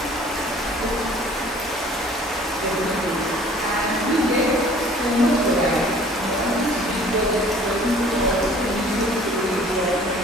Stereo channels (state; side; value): normal; both; correlation 0.51